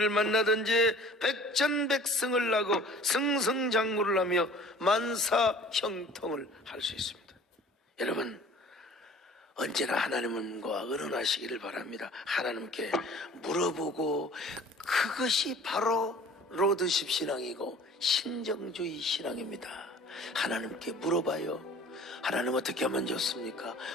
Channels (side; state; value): both; normal; correlation 0.48